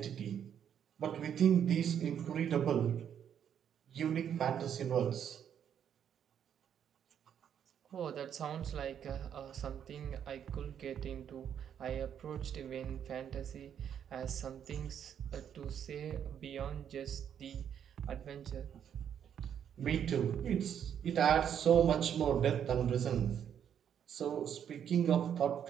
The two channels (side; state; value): left; quieter; 8.9 dB